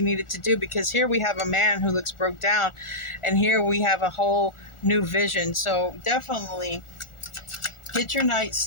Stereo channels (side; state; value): right; late; 1.4 ms